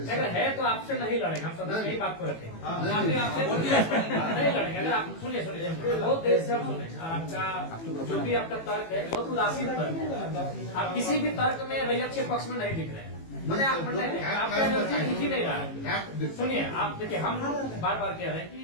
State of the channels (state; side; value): late; right; 18 ms